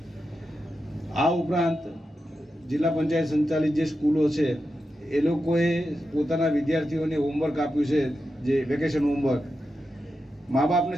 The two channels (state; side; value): normal; both; correlation 0.89